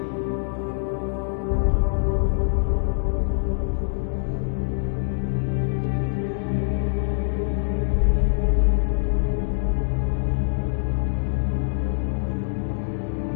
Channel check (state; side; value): silent; right; digital silence